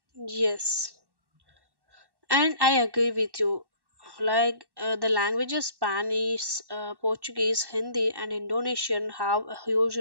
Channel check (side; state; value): left; late; 1.1 ms